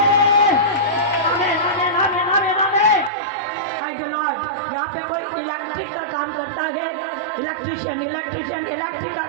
आमीन, आमीन, आमीन, आमीन, आमीन। Thank you Lord. यहाँ पे कोई इलेक्ट्रिक का काम करता है, इलेक्ट्रिशियन, इलेक्ट्रिशियन इलेक्ट्रिक का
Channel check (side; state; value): left; drops out; at 3.1 s